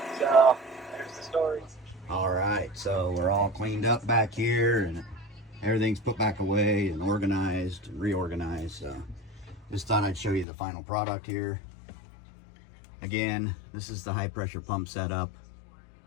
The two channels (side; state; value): right; drops out; at 10.5 s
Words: So there's the story. All right, so we're all cleaned up back here and everything's put back away and organized and reorganized. So just thought I'd show you the final product here. Again, this is the high pressure pump setup